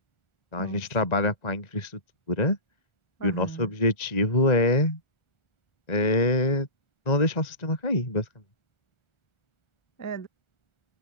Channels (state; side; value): late; right; 1.4 ms